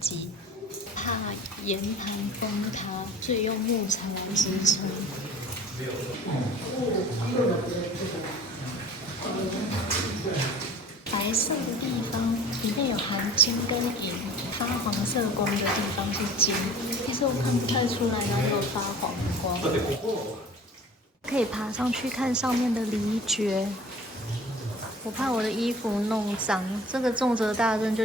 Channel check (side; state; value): both; normal; correlation 0.43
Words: 怕岩盘崩塌，所以用木材来支撑。白色的地方里面有含金跟银，发黄色光的地方是金。其实我看不太出来哪有发黄光。可以爬上去看上面的离蕨。我怕我的衣服弄脏，这个重责大任